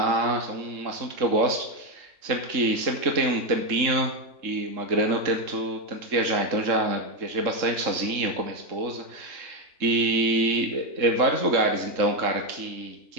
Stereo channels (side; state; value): left; late; 3.7 ms